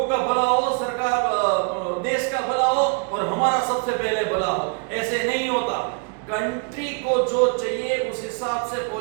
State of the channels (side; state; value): left; quieter; 38.1 dB